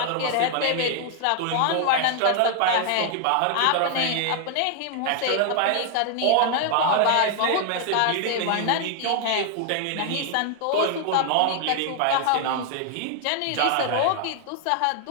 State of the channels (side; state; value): both; different; correlation 0.00